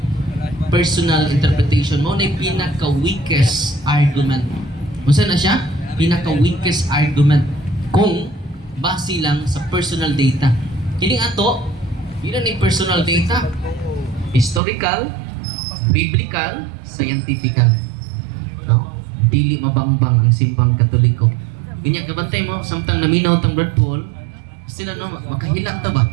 Personal interpretation mo na pinaka-weakest argument. Musa na siya? Pinaka-weakest argument kung base lang sa personal data. Kining ato, yun ni personal data. Historical, biblical, scientifical. No? Dili mabangbang ang simbang Katoliko. Kanya kabantay mo, samtang naminaw tang Brad Paul, sila no, makahilak ta ba?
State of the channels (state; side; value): drops out; left; at 14.6 s